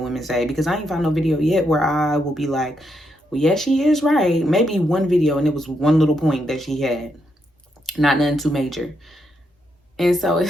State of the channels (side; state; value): both; normal; correlation 0.80